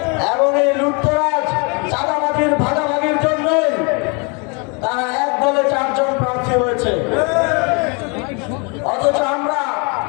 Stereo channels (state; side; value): quieter; right; 32.9 dB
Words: এবং এই লুটতরাজ চাঁদাবাজির ভাগাভাগির জন্য তারা এক দলে 4 জন প্রার্থী হয়েছে। অথচ আমরা